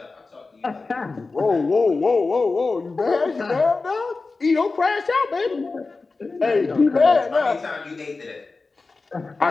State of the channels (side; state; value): right; quieter; 3.9 dB